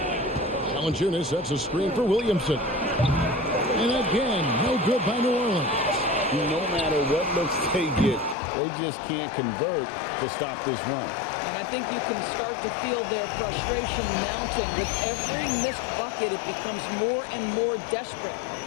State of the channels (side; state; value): right; drops out; at 8.3 s